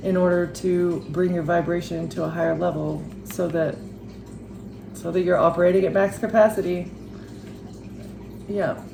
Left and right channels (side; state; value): both; identical; correlation 1.00